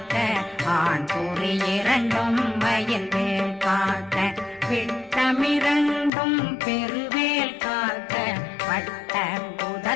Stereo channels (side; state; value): right; drops out; at 6.1 s